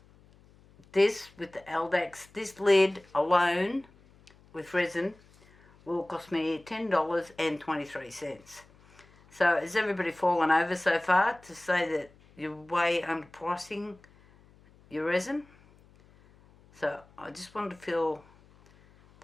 this with the Eldex, this lid alone with resin will cost me $10.23. So has everybody fallen over so far to say that you're way underpricing your resin? So I just wanted to fill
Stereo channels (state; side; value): noise; left; hum, 28 dB below the sound